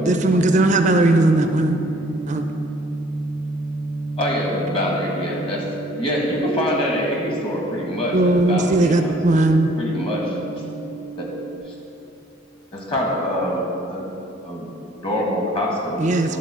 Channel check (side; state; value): both; normal; correlation 0.58